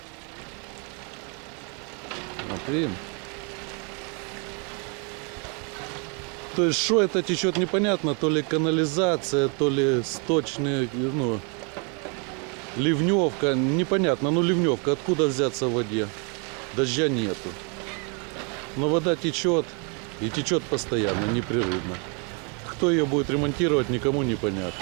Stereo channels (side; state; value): left; quieter; 35.8 dB